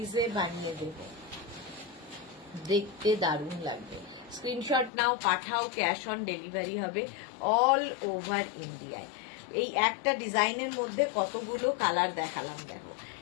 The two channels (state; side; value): drops out; right; at 4.9 s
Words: বানিয়ে দেব, দেখতে দারুণ লাগবে। স্ক্রিনশট নাও, পাঠাও, ক্যাশ অন ডেলিভারি হবে অল ওভার ইন্ডিয়ায়। এই একটা ডিজাইনের মধ্যে কতগুলো কালার দেখালাম, দেখো,